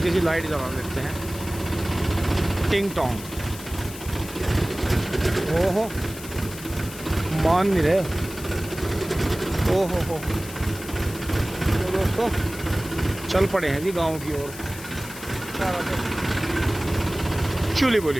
सी लाइट जला देते हैं, टिंग टोंग। ओहो मान नहीं रहे, ओहो हो। तो दोस्तों चल पड़े हैं जी गांव की ओर, चूली बोली।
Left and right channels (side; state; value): left; noise; hiss, 13 dB below the sound